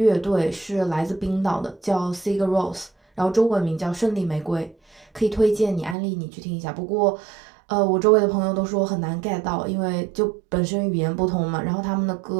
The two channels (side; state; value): left; drops out; at 6.0 s